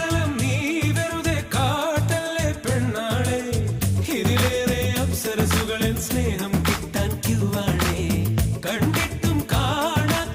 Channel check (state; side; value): identical; both; correlation 1.00